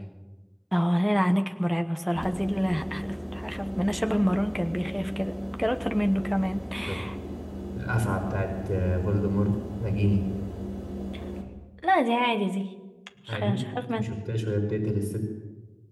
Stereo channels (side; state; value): both; identical; correlation 1.00